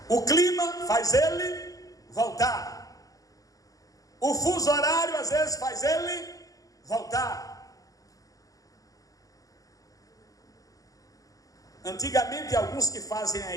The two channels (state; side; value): late; right; 0.17 ms